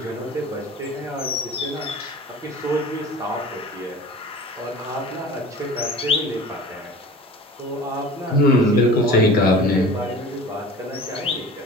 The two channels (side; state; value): both; normal; correlation 0.40